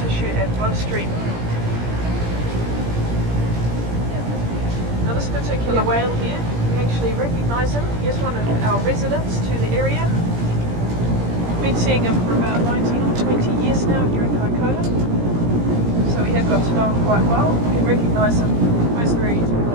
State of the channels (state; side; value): late; left; 17 ms